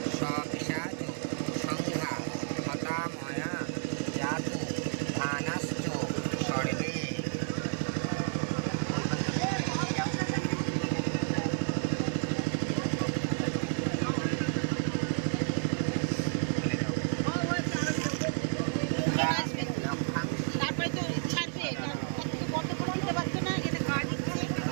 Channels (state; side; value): silent; left; 57 dB below the other